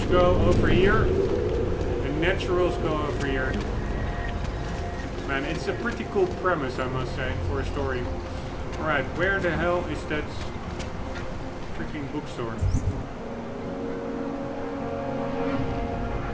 go over here, and naturals go over here. Man, it's a pretty cool premise, I must say, for a story. Alright, where the hell is that freaking bookstore?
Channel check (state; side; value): identical; both; correlation 1.00